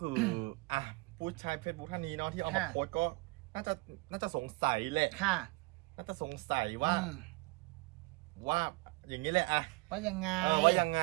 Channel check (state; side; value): quieter; left; 24.9 dB